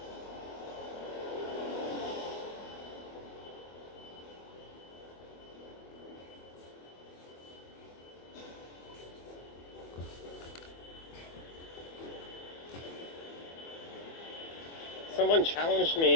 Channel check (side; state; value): right; late; 24 ms